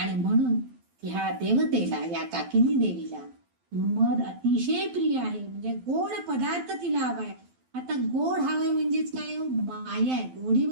म्हणून ह्या देवतेला, या काकिनी देवीला मध अतिशय प्रिय आहे. म्हणजे गोड पदार्थ तिला हवाय. आता गोड हवंय म्हणजेच काय? माया आहे. गोडी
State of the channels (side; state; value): left; late; 12 ms